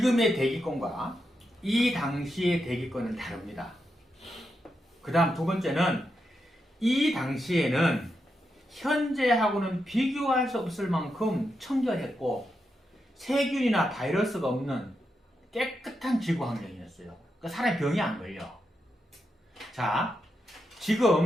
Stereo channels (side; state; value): both; normal; correlation 0.85